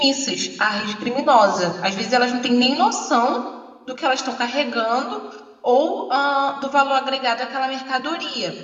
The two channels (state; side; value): identical; both; correlation 1.00